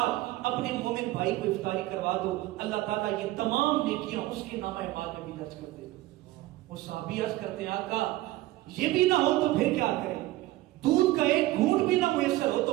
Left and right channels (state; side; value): quieter; left; 17.2 dB